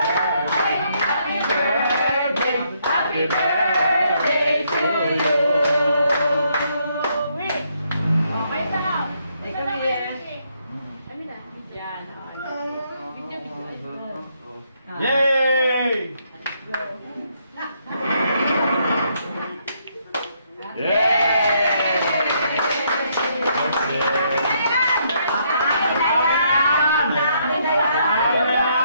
happy birthday, happy birthday to you. Okay na. Ikaw na yan. Ano na? Yan. Video. Yay!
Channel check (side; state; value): both; inverted; correlation -0.73